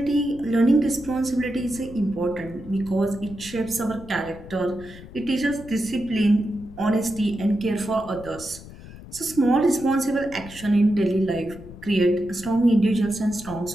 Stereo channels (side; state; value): left; noise; rumble, 16 dB below the sound